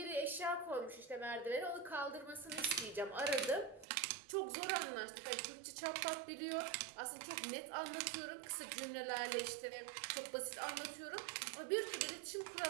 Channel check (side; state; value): left; drops out; at 3.9 s